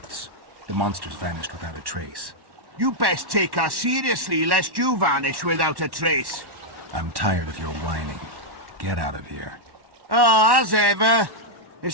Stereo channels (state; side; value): late; left; 1.1 ms